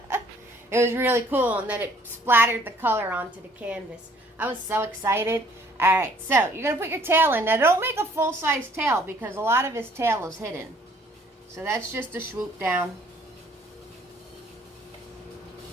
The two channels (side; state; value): both; normal; correlation 0.60